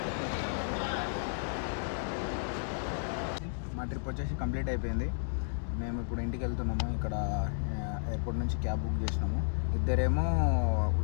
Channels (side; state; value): right; silent; digital silence